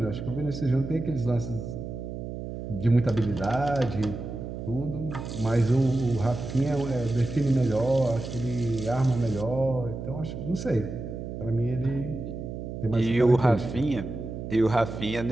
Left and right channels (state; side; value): noise; right; hum, 7 dB below the sound